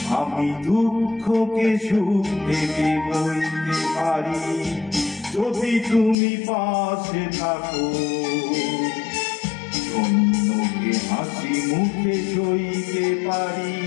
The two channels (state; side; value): drops out; right; at 6.2 s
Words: আমি দুঃখকে সুখ ভেবে বইতে পারি যদি তুমি পাশে থাকো। অন্যকে হাসি মুখে সইতে পারি